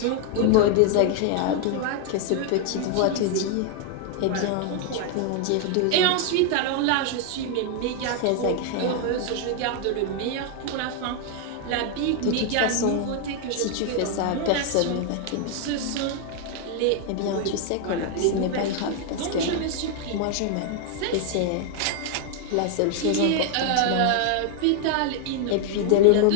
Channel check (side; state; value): both; different; correlation 0.00